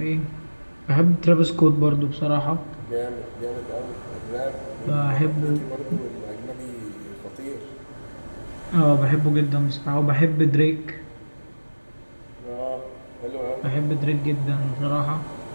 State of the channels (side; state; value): both; inverted; correlation -1.00